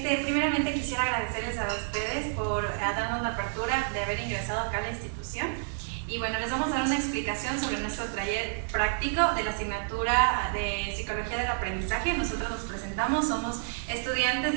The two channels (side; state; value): left; silent; digital silence